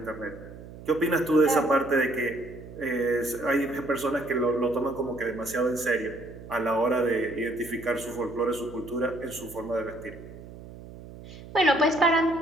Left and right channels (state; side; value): noise; right; hum, 16 dB below the sound